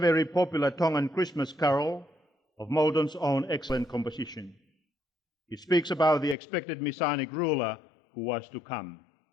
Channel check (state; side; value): drops out; right; at 6.4 s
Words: popular Tongan Christmas carol of Moulton's own excellent composition. It speaks about the expected Messianic ruler who was to come.